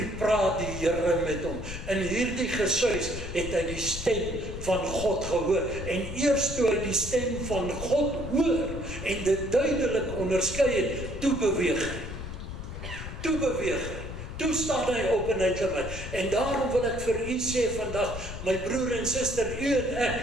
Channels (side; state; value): left; noise; rumble, 8 dB below the sound